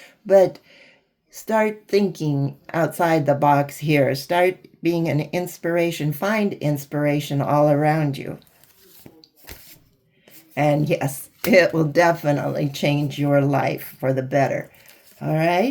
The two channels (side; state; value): both; identical; correlation 1.00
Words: but start thinking outside the box here. Start being an inspiration. Find inspiration all around you. And yes, it will definitely change your life for the better. All